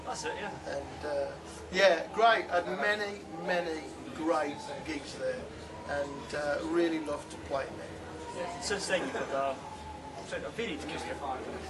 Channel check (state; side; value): identical; both; correlation 1.00